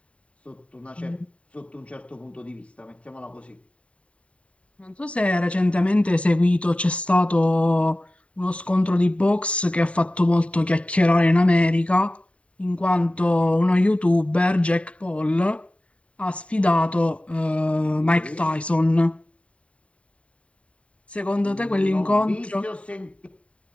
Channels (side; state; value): right; late; 0.064 ms